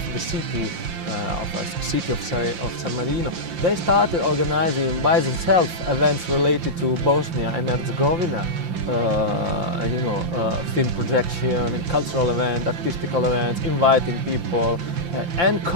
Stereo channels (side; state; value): left; late; 5.8 ms